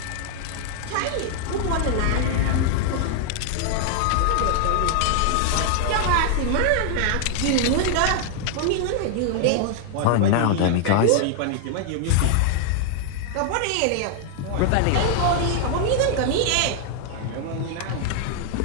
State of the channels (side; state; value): both; different; correlation 0.00